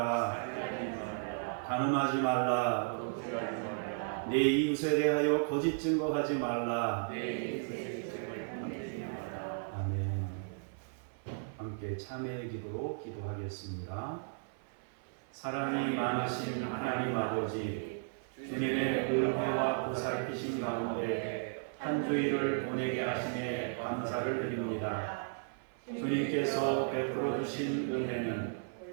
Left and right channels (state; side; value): silent; left; 54 dB below the other